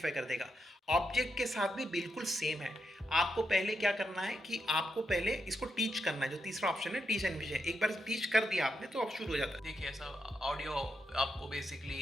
कर देगा। ऑब्जेक्ट के साथ भी बिल्कुल सेम है। आपको पहले क्या करना है कि आपको पहले इसको टीच करना है, जो तीसरा ऑप्शन है टीच एनविजन। एक बार टीच कर दिया आपने तो अब शुरू हो जाता है। देखिए ऐसा ऑडियो आपको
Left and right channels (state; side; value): normal; both; correlation 0.84